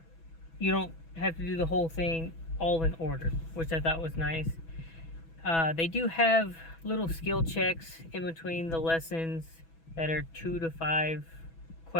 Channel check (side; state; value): right; late; 6.1 ms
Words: you don't have to do the whole thing all in order, which I thought was nice. They do have little skill checks in between the lessons that are 2 to 5